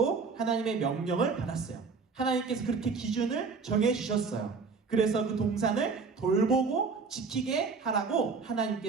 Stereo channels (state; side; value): quieter; left; 4.9 dB